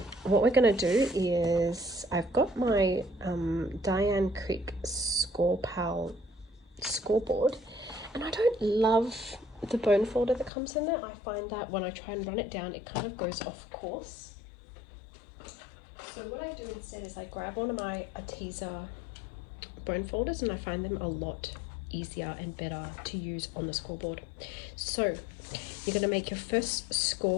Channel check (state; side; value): drops out; right; at 10.5 s